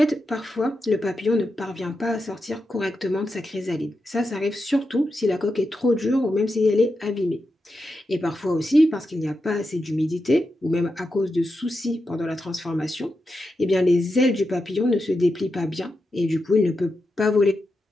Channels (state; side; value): normal; both; correlation 0.88